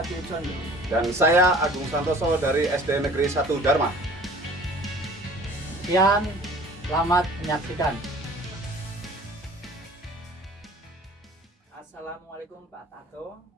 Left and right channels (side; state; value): both; normal; correlation 0.48